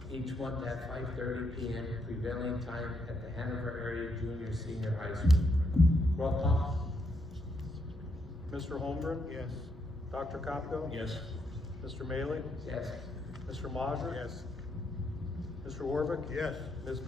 each month at 5:30 p.m. prevailing time at the Hanover Area Junior Senior High School. Roll call. Mr. Holmgren? Yes. Dr. Kopko? Yes. Mr. Maley? Yes. Mr. Mazur? Yes. Mr. Warvick? Yes. Ms.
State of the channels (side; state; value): both; normal; correlation 0.78